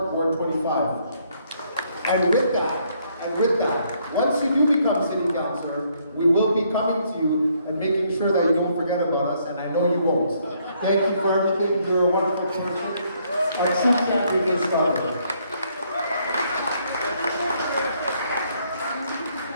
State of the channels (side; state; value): both; inverted; correlation -0.70